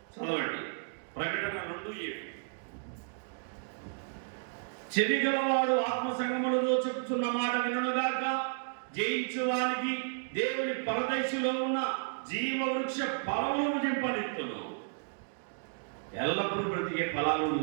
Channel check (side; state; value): left; silent; digital silence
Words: చదవండి. ప్రకటన 2:7. చెవి గలవాడు ఆత్మ సంగములతో చెప్పుచున్న మాట వినుగాక. జయించు వానికి దేవుని పరదైసులో ఉన్న జీవ వృక్ష ఫలములను జింపనిత్తును. ఎల్లప్పుడూ బ్రతికే ఫలాలు